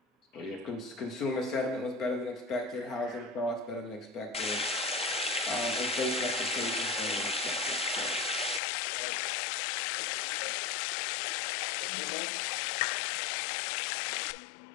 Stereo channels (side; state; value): right; drops out; at 8.6 s